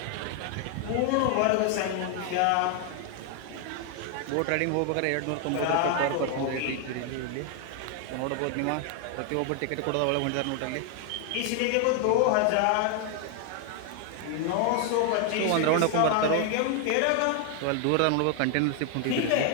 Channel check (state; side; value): different; both; correlation 0.00